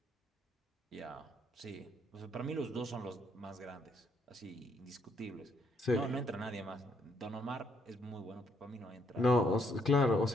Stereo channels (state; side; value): normal; both; correlation 0.71